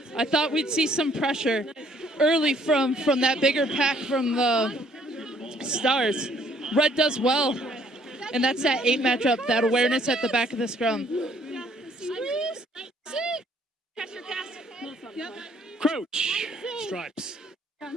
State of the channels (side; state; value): both; normal; correlation 0.63